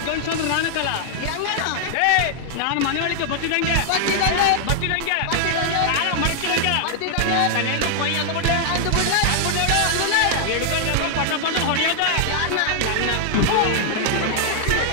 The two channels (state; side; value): different; both; correlation -0.01